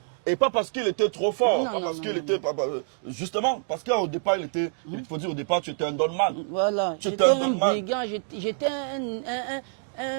Et pas parce qu'il était trop fort, justement, parce qu'au départ, il faut dire au départ, tu étais un donman. Voilà, j'étais un brigand, j'étais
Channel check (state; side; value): silent; left; digital silence